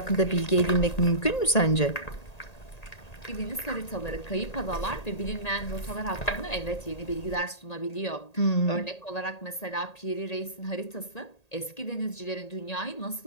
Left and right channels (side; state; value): right; late; 1.8 ms